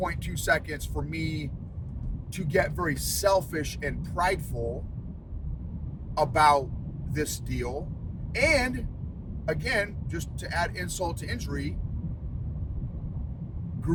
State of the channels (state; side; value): identical; both; correlation 1.00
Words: seconds for me to get very selfish and prideful about this deal. And again, just to add insult to injury,